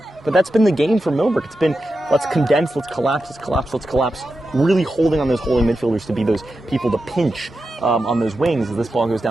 But that's been the game for Millbrook. It's been, let's condense, let's collapse, really holding on those holding midfielders to be those people to pinch on those wings. As this ball goes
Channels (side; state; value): both; normal; correlation 0.90